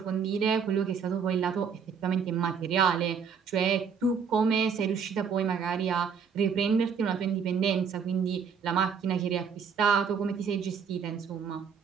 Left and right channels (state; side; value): quieter; left; 6.5 dB